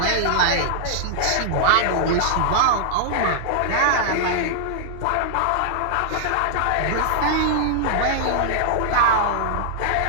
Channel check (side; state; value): both; different; correlation -0.01